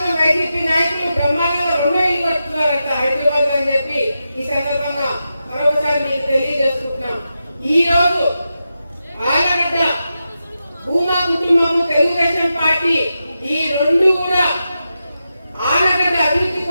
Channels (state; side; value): inverted; both; correlation -0.89